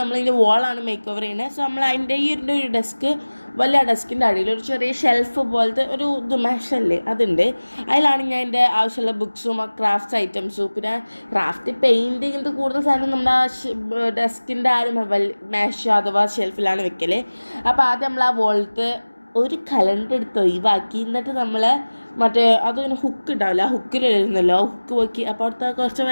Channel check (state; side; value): inverted; both; correlation -1.00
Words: നമ്മൾ ഇതിൻ്റെ വോളാണ് മേക്ക് ഓവർ ചെയ്യുന്നത്. സോ നമ്മൾ അതിൻ്റെ ഒരു ഡെസ്ക് വലിയ ഡെസ്കിൻ്റെ അടിയിൽ ഒരു ചെറിയ ഷെൽഫ് പോലത്തെ ഒരു മെഷല്ലേ അതുണ്ട്. അതിലാണ് ഞാൻ എൻ്റെ ആവശ്യമുള്ള ബുക്സും ക്രാഫ്റ്റ്സ് ഐറ്റംസും പിന്നെ ക്രാഫ്റ്റ് പെയിൻറ്റ് ഇങ്ങനത്തെ കൂടുതൽ സാധനം നമ്മുടെ ഡെസ്കിൻ്റെ മേശ അഥവാ ഷെൽഫിലാണ് വെക്കൽ. അപ്പോൾ ആദ്യം നമ്മൾ ആ വോളത്ത് ഒരു കലണ്ടർ എടുത്ത് ഒഴിവാക്കി എന്നിട്ട് നമ്മൾ മറ്റേ അതിങ്ങനെ ഹുക്ക് ഉണ്ടാവില്ല, ആ ഹുക്കിലിരുന്നല്ലോ, ആ ഹുക്ക് പോക്കി. അപ്പോൾ അവിടുത്തെ കുറച്ച്